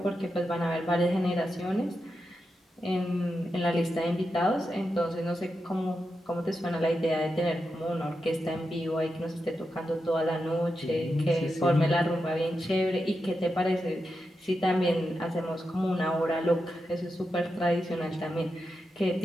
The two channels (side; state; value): both; normal; correlation 0.88